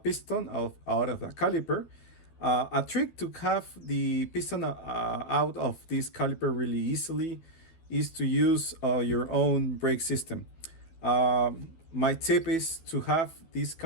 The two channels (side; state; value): right; late; 12 ms